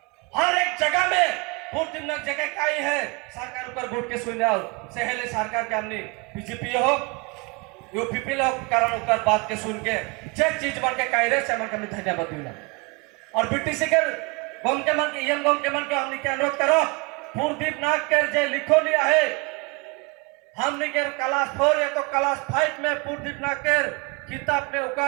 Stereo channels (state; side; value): quieter; left; 28.4 dB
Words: हर एक जगह में पोर्टिव नाक जगह काई है सरकार ऊपर बोर्ड के सुने आओ सहेले सरकार के हमने बीजेपी हो यूपीपी लोग कारण ऊपर बात के सुन के जे चीज बन के काई रे से मन के धन्यवाद दिला और बीटीसी के गम के मन के एम गम के मन के हमने के अनुरोध करो पोर्टिव नाक के जे लिखो लिया है हमने के क्लास 4 या तो क्लास 5 में पोर्टिव नाक के किताब में